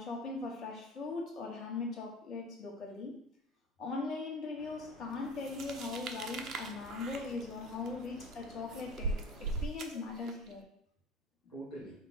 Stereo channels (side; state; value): both; normal; correlation 0.37